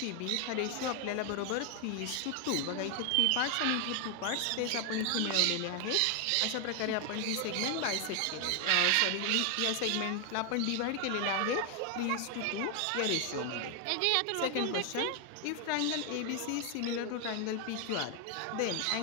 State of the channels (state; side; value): different; both; correlation 0.00